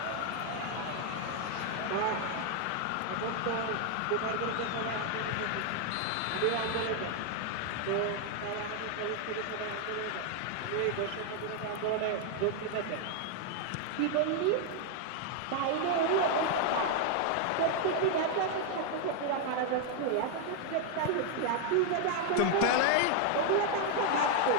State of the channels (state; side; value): different; both; correlation 0.00